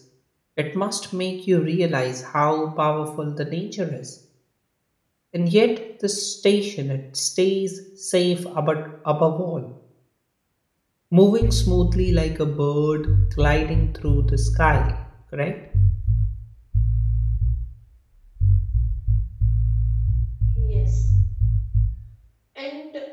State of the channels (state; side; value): identical; both; correlation 1.00